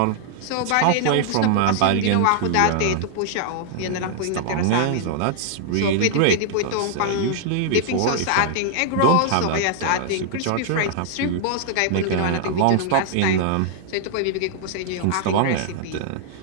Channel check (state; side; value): different; both; correlation -0.01